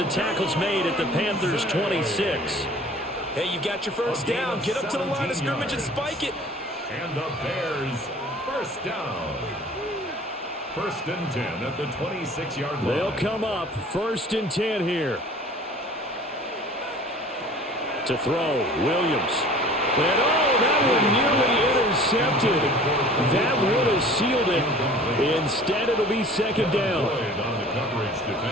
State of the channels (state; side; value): normal; both; correlation 0.46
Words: tackle's made at the Panthers' 26. Hey, you got your first down. Get up to the line of scrimmage and spike it. And the Bears, first down. First and 10 at the 26-yard line. They'll come up first and 10 here. To throw, Williams. And that one nearly intercepted. That would have sealed it. Instead, it'll be second down.